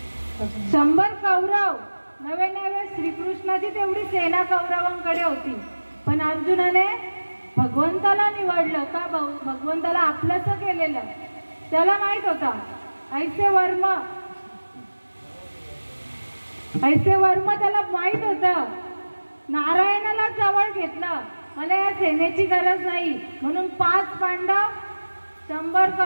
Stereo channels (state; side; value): inverted; both; correlation -1.00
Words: 100 कौरव. नवे श्रीकृष्णाची तेवढी सेना कौरवांकडे होती, पण अर्जुनाने भगवंताला निवडलं का? भगवंताला आपलंसं केलेलं. त्याला माहित होता ऐसे वर्म त्याला माहित होतं. नारायणाला जवळ घेतलं, मला या सेनेची गरज नाही म्हणून 5 पांडव 100